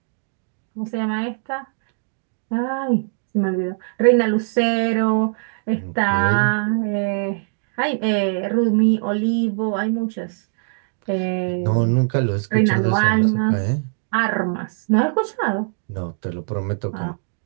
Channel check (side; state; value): left; silent; digital silence